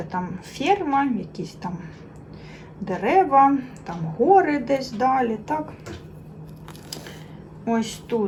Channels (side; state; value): both; identical; correlation 1.00